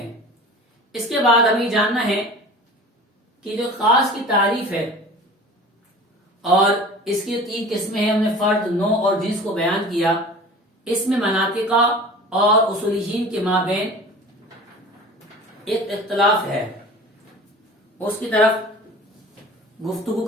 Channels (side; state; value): both; normal; correlation 0.40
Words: اس کے بعد ہمیں جاننا ہے کہ جو خاص کی تعریف ہے اور اس کی تین قسمیں ہیں، ہم نے فرد، نوع اور جنس کو بیان کیا۔ اس میں مناطقہ اور اصولیین کے مابین ایک اختلاف ہے، اس کی طرف گفتگو